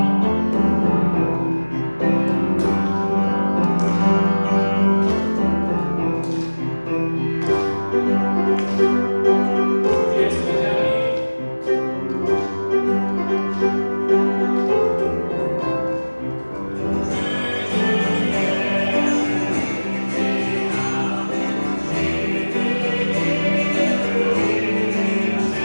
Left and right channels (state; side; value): inverted; both; correlation -1.00